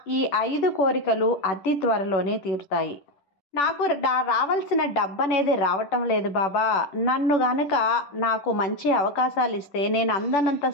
ఈ 5 కోరికలు అతి త్వరలోనే తీరుతాయి. నాకు రావాల్సిన డబ్బు అనేది రావటం లేదు బాబా. నన్ను గనుక నాకు మంచి అవకాశాలు ఇస్తే నేను అందనంత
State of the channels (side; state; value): right; late; 10 ms